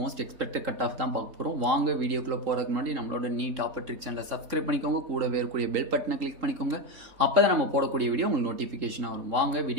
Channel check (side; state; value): left; late; 3.8 ms